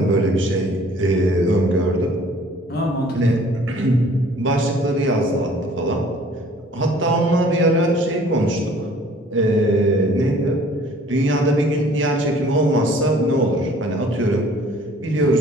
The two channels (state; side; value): normal; both; correlation 0.54